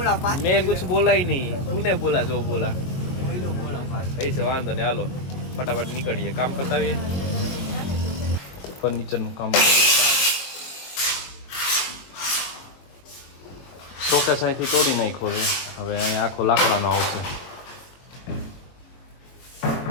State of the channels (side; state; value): right; late; 22 ms